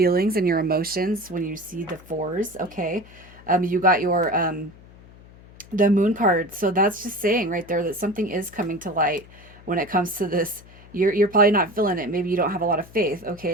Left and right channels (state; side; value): noise; left; hum, 22 dB below the sound